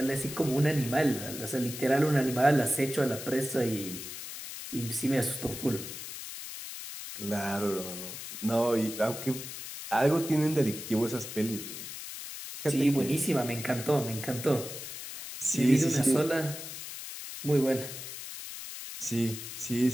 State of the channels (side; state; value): left; noise; hiss, 9 dB below the sound